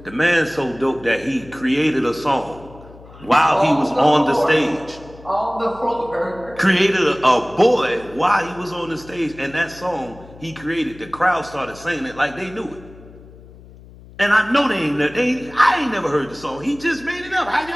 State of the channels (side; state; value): left; noise; hum, 21 dB below the sound